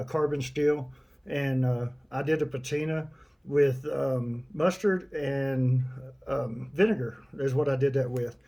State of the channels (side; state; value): both; identical; correlation 1.00